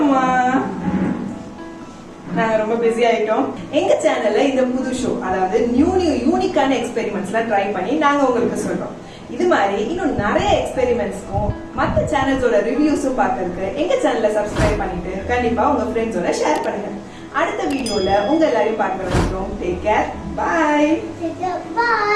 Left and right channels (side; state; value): both; identical; correlation 1.00